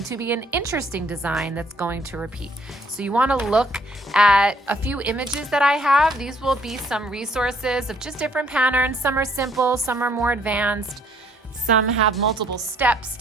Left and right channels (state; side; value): normal; both; correlation 0.64